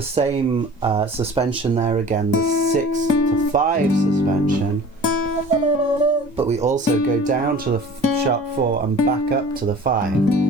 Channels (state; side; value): normal; both; correlation 0.43